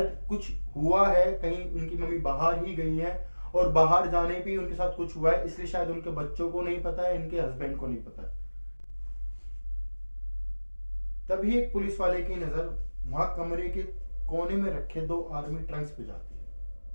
कुछ हुआ है, कहीं उनकी मम्मी बाहर ही गई है और बाहर जाने पे उनके साथ कुछ हुआ है, इसलिए शायद उनके बच्चों को नहीं पता है, इनके हस्बैंड को नहीं पता है। तभी एक पुलिस वाले की नजर वहां कमरे के कोने में रखे 2 आर्मी ट्रंक्स पे जाती है।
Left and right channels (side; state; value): both; inverted; correlation -1.00